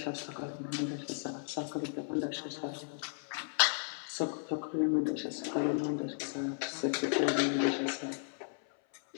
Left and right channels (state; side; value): silent; right; 54 dB below the other